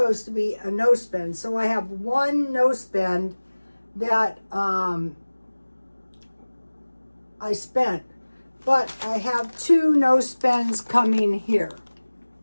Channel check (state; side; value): inverted; both; correlation -1.00